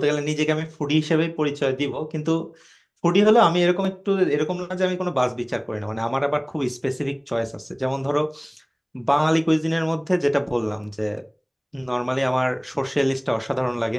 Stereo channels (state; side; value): identical; both; correlation 1.00